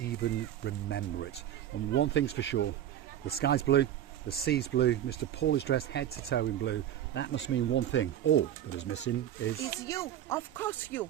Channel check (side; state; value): left; quieter; 11.1 dB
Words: remember it. And one thing's for sure, the sky's blue, the sea's blue, Mr. Paul is dressed head to toe in blue. That must mean one thing, all that is missing is... It's you, of course you.